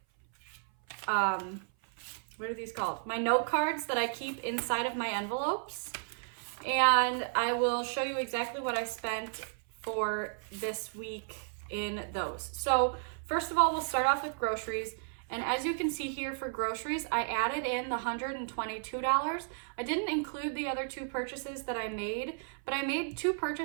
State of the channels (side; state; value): left; silent; 55 dB below the other